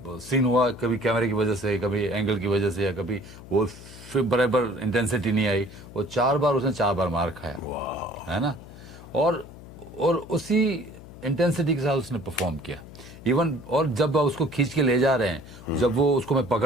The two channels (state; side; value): noise; left; hum, 17 dB below the sound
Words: सीन हुआ, कभी कैमरे की वजह से, कभी एंगल की वजह से, या कभी वो फिर बराबर इंटेंसिटी नहीं आई। वो 4 बार उसने 4 बार मार खाया, है ना। और उसी इंटेंसिटी के साथ उसने परफॉर्म किया इवन। और जब उसको खींच के ले जा रहे हैं, जब वो उसको मैं